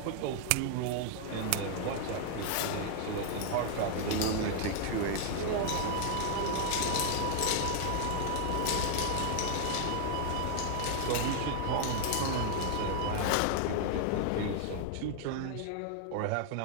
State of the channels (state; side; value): different; both; correlation 0.00